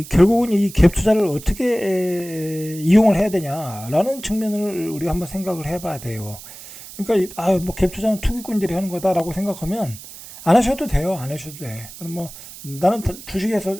이 갭 투자를 어떻게 이용을 해야 되냐라는 측면을 우리가 한번 생각을 해봐야 돼요. 그러니까 뭐 갭 투자는 투기꾼들이 하는 거다라고 생각하면 안 하셔도 돼요. 안 하셔도 돼. 그럼 뭐 나는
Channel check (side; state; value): right; noise; hiss, 15 dB below the sound